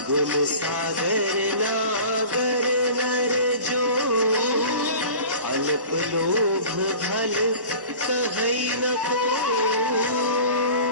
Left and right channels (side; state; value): left; late; 1.1 ms